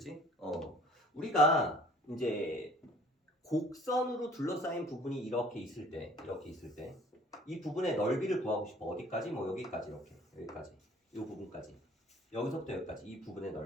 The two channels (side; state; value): both; normal; correlation 0.53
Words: 우리가 이제 곡선으로 둘러싸인 부분이 이렇게 있을 때 이 부분의 넓이를 구하고 싶어. 어디까지? 뭐 여기까지 이렇게 여기까지 이 부분까지 여기서부터 여기까지 이 부분의